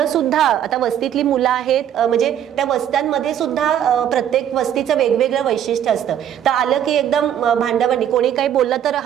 सुद्धा आता वस्तीतली मुलं आहेत, म्हणजे त्या वस्त्यांमध्ये सुद्धा प्रत्येक वस्तीचं वेगवेगळं वैशिष्ट्य असतं, तर आलं की एकदम भांडाभांडी, कोणी काही बोललं तर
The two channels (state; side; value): quieter; left; 10.1 dB